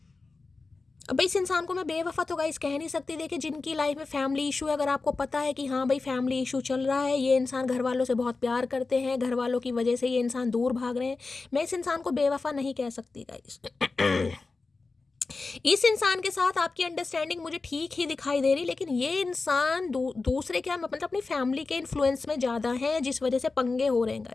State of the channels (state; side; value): quieter; right; 3.9 dB